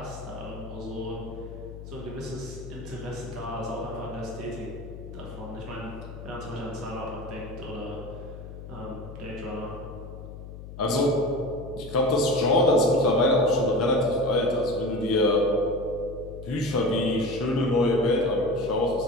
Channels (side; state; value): left; noise; hum, 12 dB below the sound